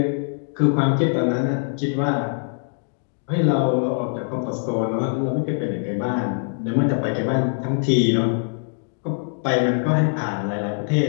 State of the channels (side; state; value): right; silent; 64 dB below the other